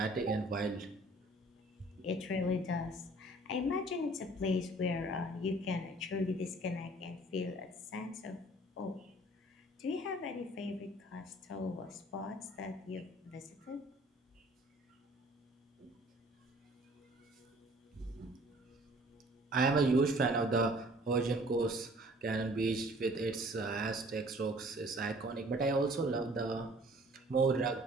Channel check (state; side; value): normal; both; correlation 0.53